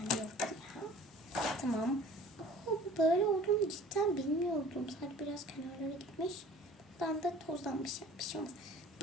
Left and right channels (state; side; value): normal; both; correlation 0.47